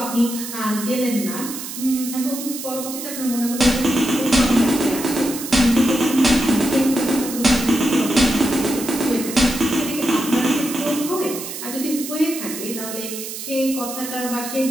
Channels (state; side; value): noise; right; hiss, 8 dB below the sound